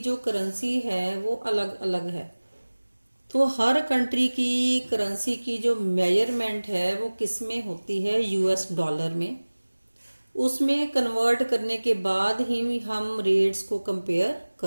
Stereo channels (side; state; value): both; inverted; correlation -1.00